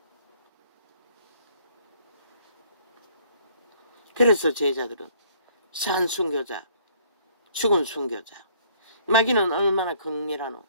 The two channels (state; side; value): inverted; both; correlation -0.61